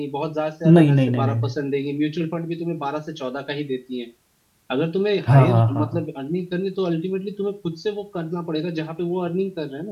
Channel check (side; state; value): both; identical; correlation 1.00